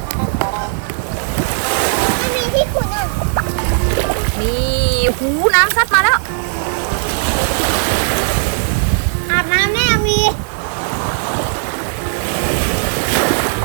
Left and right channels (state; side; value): silent; left; digital silence